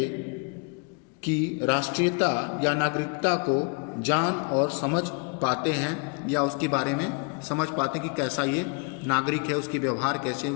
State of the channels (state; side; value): quieter; right; 34.1 dB